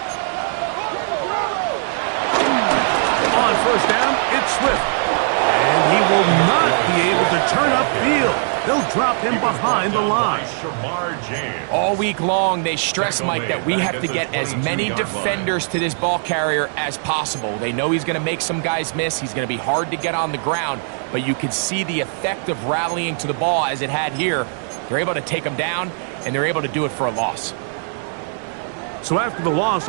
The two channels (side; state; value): left; silent; 66 dB below the other